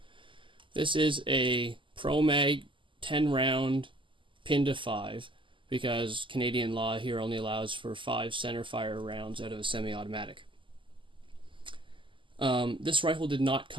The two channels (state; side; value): late; left; 0.25 ms